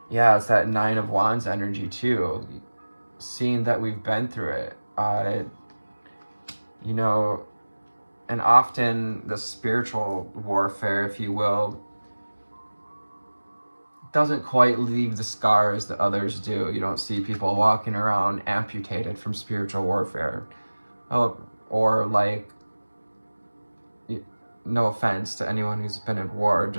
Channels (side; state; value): both; inverted; correlation -1.00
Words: yeah, it's that Nine of Wands energy too, seeing that we've been through it, you know, and often the spiritual warfare, if you will, doesn't quite leave the scars that others do. You don't see people walking around amputated from spiritual warfare. Or like, no offense to anyone who's been in war,